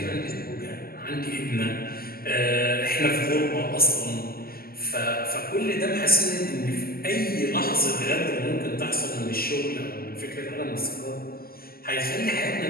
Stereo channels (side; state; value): right; late; 0.43 ms